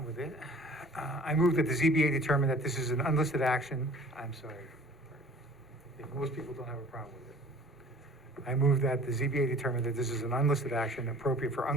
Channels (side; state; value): both; normal; correlation 0.48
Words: with it, I move that the ZBA determine that this is an unlisted action. I'm sorry. If most people don't have a problem with it. I move that the ZBA determine that this is an unlisted action appropriate for